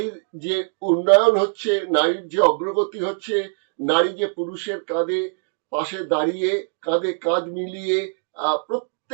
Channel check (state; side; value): silent; left; digital silence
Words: যে উন্নয়ন হচ্ছে, নারীর যে অগ্রগতি হচ্ছে, নারী যে পুরুষের কাঁধে পাশে দাঁড়িয়ে কাঁধে কাঁধ মিলিয়ে